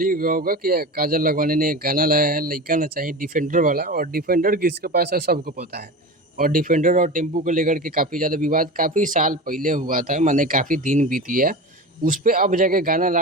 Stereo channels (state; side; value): normal; both; correlation 0.28